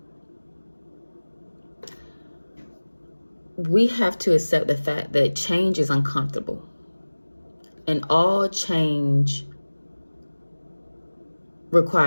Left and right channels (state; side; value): inverted; both; correlation -1.00